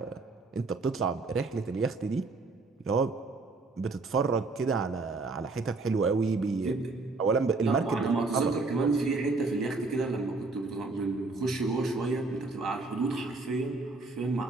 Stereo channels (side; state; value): left; quieter; 3.7 dB